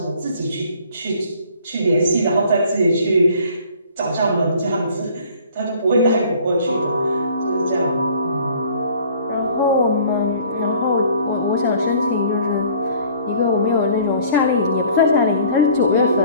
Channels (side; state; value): both; inverted; correlation -0.53